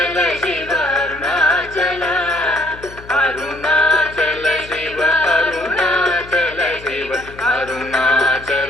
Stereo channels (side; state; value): left; noise; hum, 18 dB below the sound